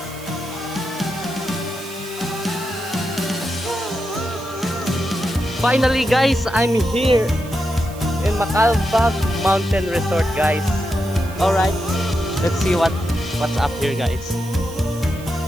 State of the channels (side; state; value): right; noise; hiss, 19 dB below the sound